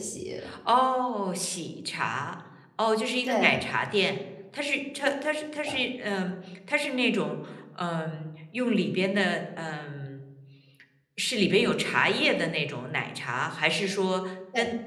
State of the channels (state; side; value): identical; both; correlation 1.00